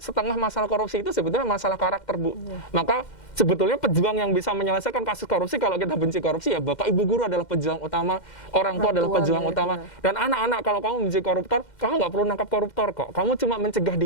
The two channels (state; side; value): late; right; 2.1 ms